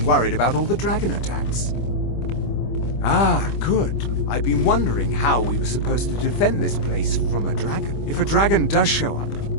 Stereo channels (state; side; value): late; right; 25 ms